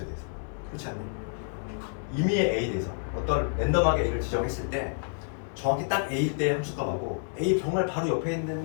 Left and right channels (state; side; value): silent; right; digital silence